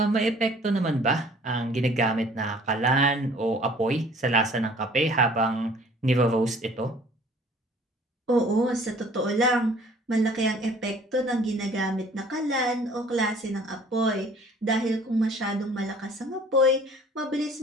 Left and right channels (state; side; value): normal; both; correlation 0.53